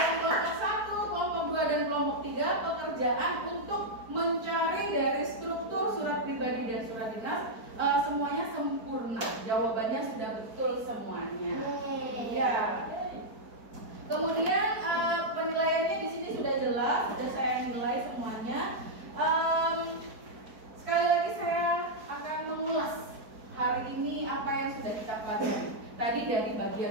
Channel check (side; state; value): left; late; 4.5 ms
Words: kelompok 1, kelompok 2, dan kelompok 3 pekerjaan untuk mencari dari struktur surat pribadi dan surat dinas semuanya sempurna. Jawabannya sudah betul semuanya. Ya. Kemudian penilaiannya di sini sudah jelas, sudah saya nilai semuanya. Sekali lagi saya akan mengulas hari ini apa yang sudah kita pelajari. Tadi dari